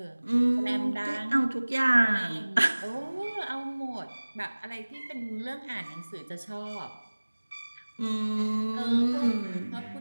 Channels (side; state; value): both; inverted; correlation -1.00